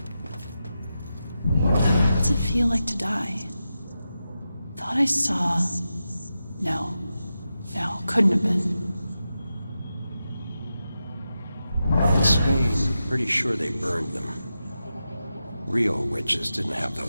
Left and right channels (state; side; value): inverted; both; correlation -0.90